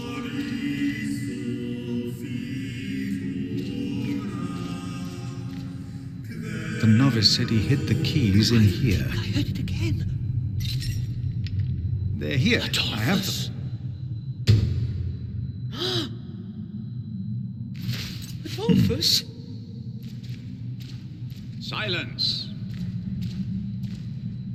The novice said he hid the keys in here. I heard it again. They're here. Adolphus. I have them. Adolphus? Silence.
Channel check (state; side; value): identical; both; correlation 1.00